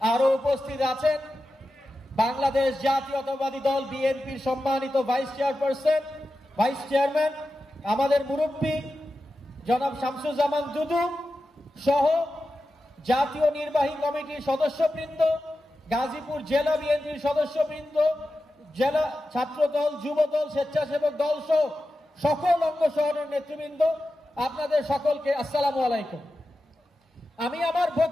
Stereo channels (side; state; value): both; normal; correlation 0.92